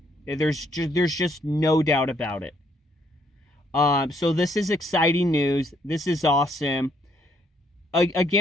There's just no doubt about it. So this is exciting news. This is awesome.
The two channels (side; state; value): both; normal; correlation 0.69